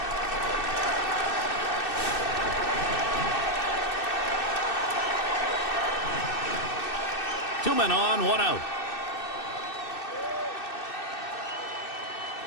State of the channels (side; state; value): right; late; 2.6 ms